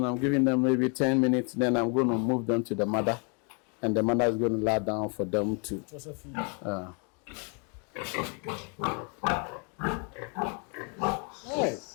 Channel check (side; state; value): right; quieter; 36.8 dB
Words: I'm giving them maybe 10 minutes, then I'm going to move them to the mother, and the mother is going to lie down for them to.